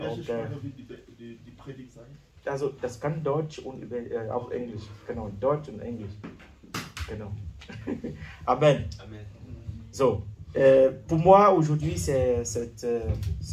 Die Predigt sein? Also das kann Deutsch und auch Englisch. Genau, Deutsch und Englisch. Genau. Amen. Amen. So, pour moi aujourd'hui c'est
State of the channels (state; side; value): identical; both; correlation 1.00